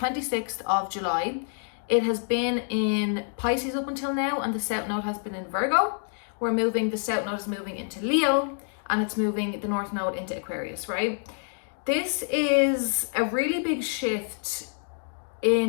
of July. It has been in Pisces up until now, and the South Node has been in Virgo. The South Node is moving into Leo, and it's moving the North Node into Aquarius, right? This is a really big shift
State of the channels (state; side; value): silent; right; 57 dB below the other